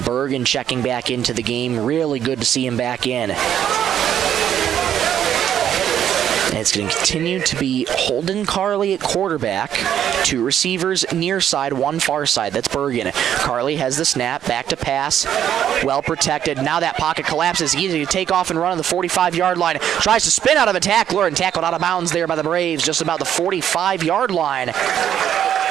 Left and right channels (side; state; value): left; quieter; 10.0 dB